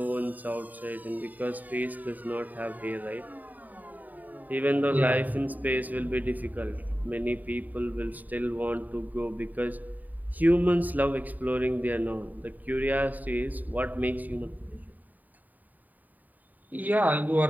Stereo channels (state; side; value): late; left; 0.083 ms